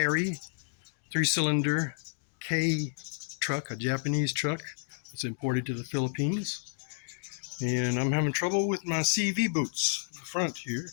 3-cylinder K truck, a Japanese truck. It's imported to the Philippines. And I'm having trouble with my CV boots in the front here.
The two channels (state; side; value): silent; right; digital silence